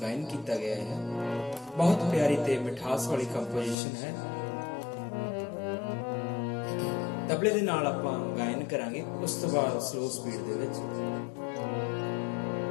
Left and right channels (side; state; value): right; drops out; at 3.8 s